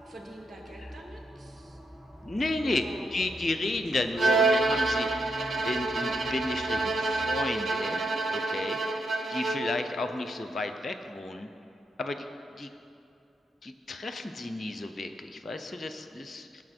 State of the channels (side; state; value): both; normal; correlation 0.81